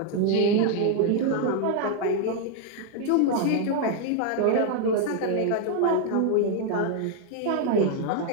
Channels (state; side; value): different; both; correlation 0.00